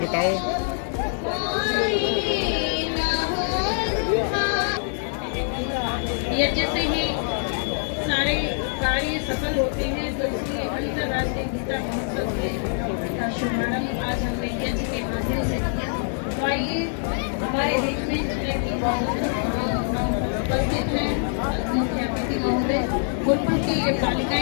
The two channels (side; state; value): right; silent; 62 dB below the other